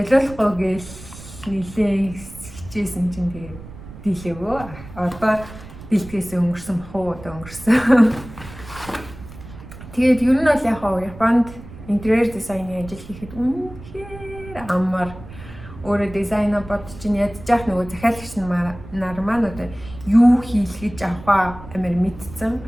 гээл нилээ хичээсэн чинь тэгээд дийлээгөө. Одоо дийлдэхээс өнгөрсөн бах уу одоо өнгөрсөн. Тэгээд ер нь бол яг Японд интерьер дизайны ажил хийхэд үнэхээр амар өөрөө дизайна бодож ядчих нөгөө захиалагч нар маань одоо юу хийх гэж авах амар мэдсэн.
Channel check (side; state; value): right; noise; rumble, 16 dB below the sound